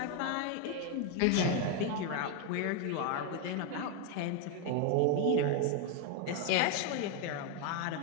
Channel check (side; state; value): both; different; correlation 0.01